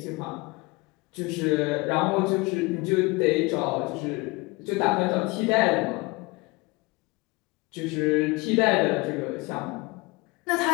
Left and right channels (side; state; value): right; quieter; 24.7 dB